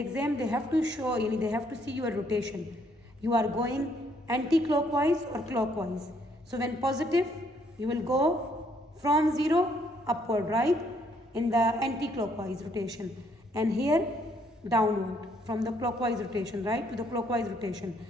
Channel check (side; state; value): both; normal; correlation 0.68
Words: they have to show, they have to see your rotation. You are going anti-clockwise or clockwise. So when positive, you will go from 0 upward, right? In the anti-clockwise rotation. And here downward from the clockwise rotation, right, to the clockwise rotation.